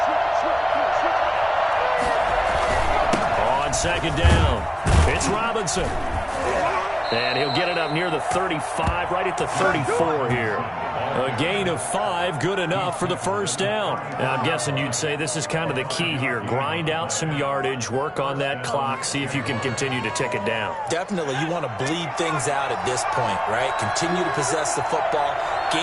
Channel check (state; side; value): identical; both; correlation 1.00